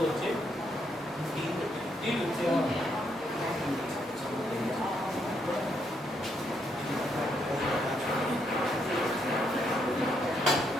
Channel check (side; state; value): both; normal; correlation 0.76